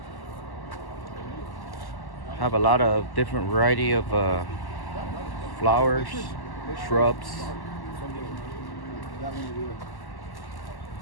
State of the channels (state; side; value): late; right; 1.1 ms